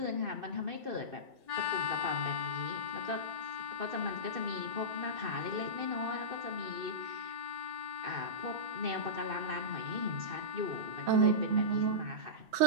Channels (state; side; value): late; left; 2.6 ms